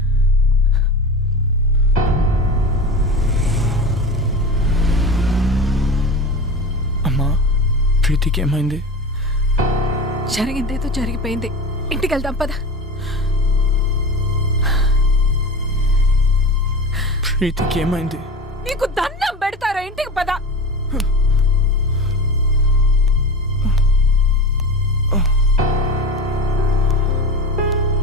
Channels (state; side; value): normal; both; correlation 0.32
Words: అమ్మా, ప్రీతికి ఏమైంది? జరిగిందేదో జరిగిపోయింది. ఇంటికి వెళ్దాం పద. ప్రీతికి ఏమైంది? నీకు దండం పెడతారా? ఇంటికి పద.